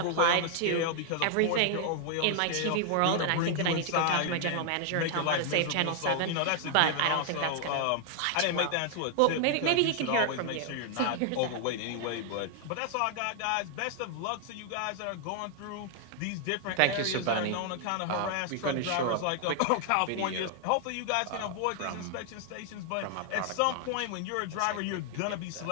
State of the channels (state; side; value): different; both; correlation 0.00